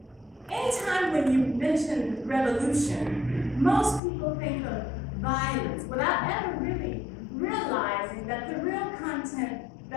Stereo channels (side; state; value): right; drops out; at 4.0 s